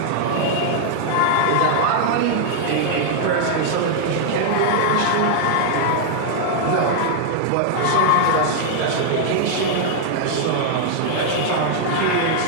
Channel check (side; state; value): both; different; correlation -0.01